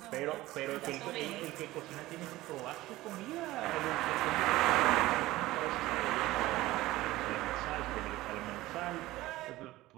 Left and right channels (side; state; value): left; quieter; 17.5 dB